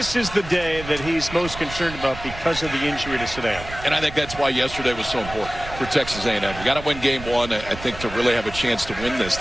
is the day that he's most concerned about because of the injury to Sadeo. And I think that's why yesterday was so important for Texas A&M. You got to win game 1, I think, to really have a chance to win this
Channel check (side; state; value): right; noise; rumble, 12 dB below the sound